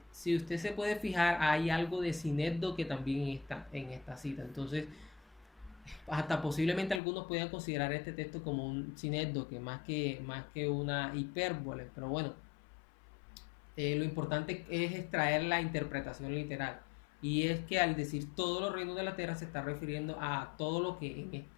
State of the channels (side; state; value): right; drops out; at 7.0 s